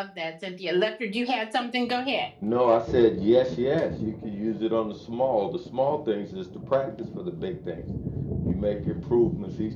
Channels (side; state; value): both; identical; correlation 1.00